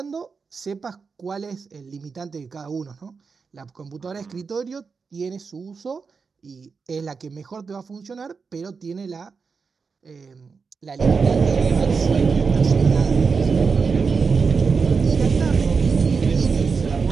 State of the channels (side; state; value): left; quieter; 5.1 dB